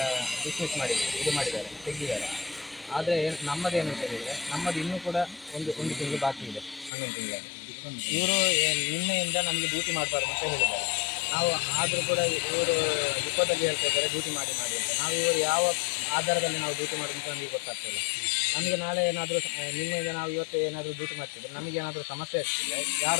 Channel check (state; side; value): drops out; right; at 6.9 s